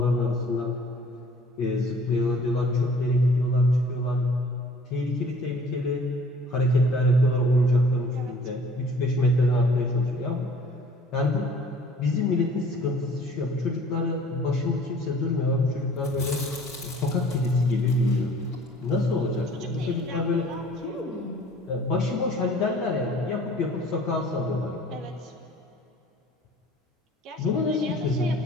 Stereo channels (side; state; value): both; normal; correlation 0.52